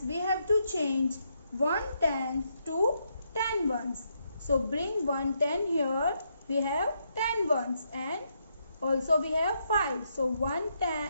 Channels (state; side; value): inverted; both; correlation -0.78